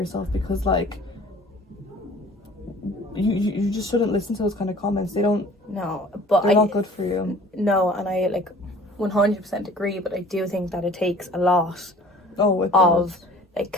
because like you just shouldn't listen to those kind of comments. They're not good for you. No, and I like 100% agree, but I do think that it takes a lot like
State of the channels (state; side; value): normal; both; correlation 0.49